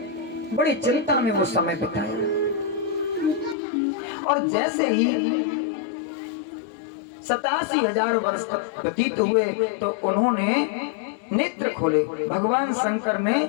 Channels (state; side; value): drops out; right; at 3.6 s